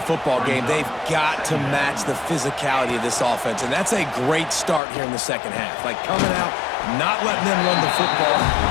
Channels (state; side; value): drops out; right; at 4.8 s